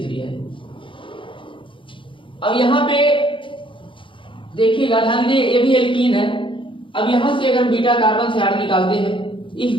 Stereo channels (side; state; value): right; late; 0.25 ms